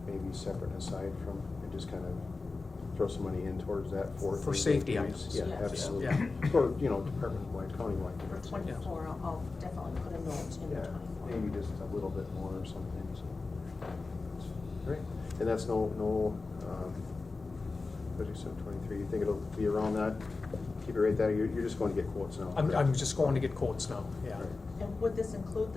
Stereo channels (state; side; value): quieter; right; 3.8 dB